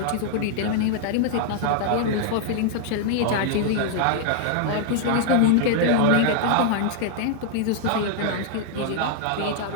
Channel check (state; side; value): different; both; correlation -0.01